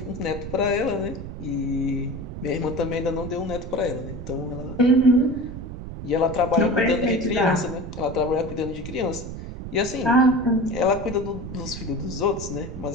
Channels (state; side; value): noise; right; rumble, 9 dB below the sound